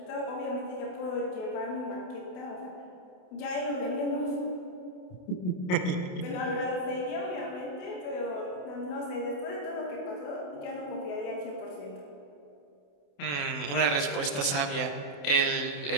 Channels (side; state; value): right; late; 28 ms